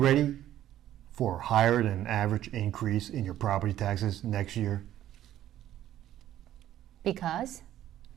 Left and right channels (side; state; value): left; quieter; 12.4 dB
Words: for higher than average increase in your property taxes next year? Because